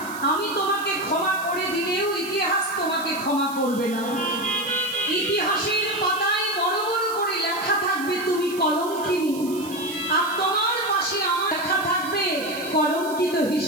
আমি তোমাকে ক্ষমা করে দিলেও ইতিহাস তোমাকে ক্ষমা করবে না। ইতিহাসের পাতায় বড় বড় করে লেখা থাকবে তুমি কলঙ্কিনী, আর তোমার পাশে আমার লেখা থাকবে কলঙ্কিত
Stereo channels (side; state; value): right; noise; hiss, 15 dB below the sound